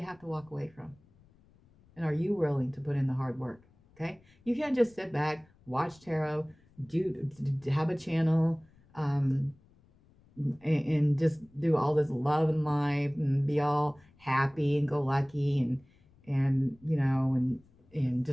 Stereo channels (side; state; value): left; noise; rumble, 30 dB below the sound